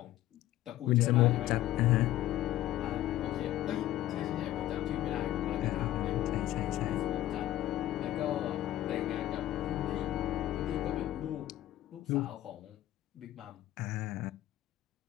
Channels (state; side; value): quieter; right; 14.2 dB